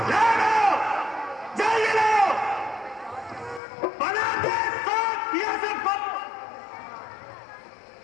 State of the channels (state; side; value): drops out; right; at 3.6 s